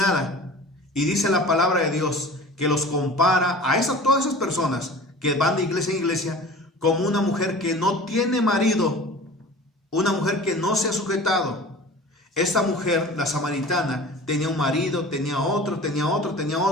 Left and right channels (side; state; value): both; normal; correlation 0.40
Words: Y dice la palabra de Dios que los compara a todas esas personas que van de iglesia en iglesia como una mujer que no tiene marido, una mujer que no se ha sujetado. Esta mujer, la samaritana, tenía un marido, tenía otro.